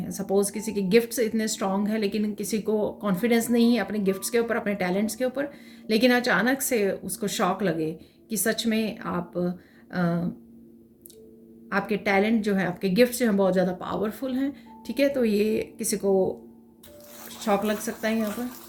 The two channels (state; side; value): identical; both; correlation 1.00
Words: सपोज़ किसी के गिफ्ट्स इतने स्ट्रांग है, लेकिन किसी को कॉन्फिडेंस नहीं है अपने गिफ्ट्स के ऊपर, अपने टैलेंट्स के ऊपर, लेकिन अचानक से उसको शॉक लगे कि सच में आपके टैलेंट जो है, आपके गिफ्ट्स जो हैं बहुत ज़्यादा पावरफुल हैं। ठीक है, तो ये किसी को शॉक लग सकता है यहाँ पर।